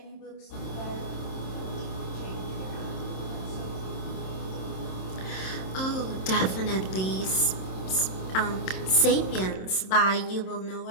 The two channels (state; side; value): late; right; 27 ms